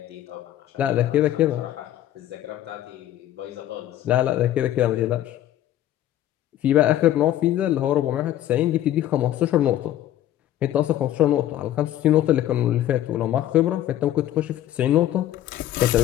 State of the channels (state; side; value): quieter; right; 12.7 dB